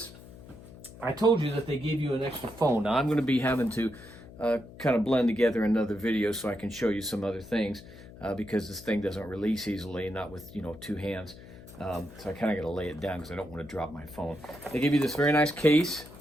I told you that they give you an extra phone. Now, I'm going to be having to kind of blend together another video so I can show you some other things because this thing doesn't release easily, not with 2 hands. So I kind of got to lay it down because I don't want to drop my phone. They give you this very nice case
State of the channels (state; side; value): noise; left; hum, 18 dB below the sound